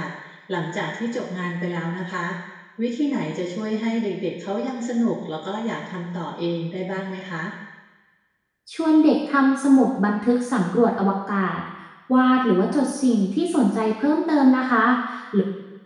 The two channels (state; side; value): identical; both; correlation 1.00